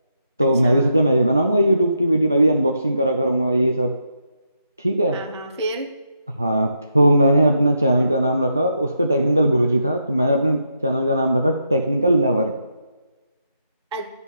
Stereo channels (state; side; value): inverted; both; correlation -0.81